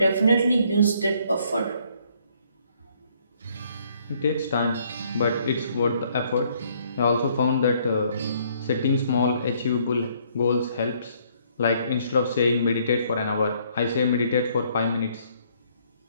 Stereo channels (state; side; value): inverted; both; correlation -0.66